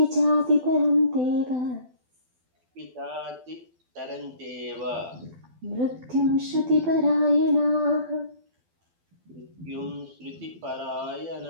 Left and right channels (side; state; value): left; late; 12 ms